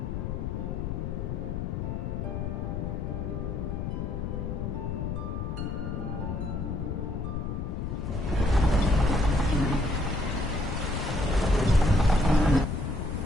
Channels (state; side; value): noise; left; rumble, 3 dB below the sound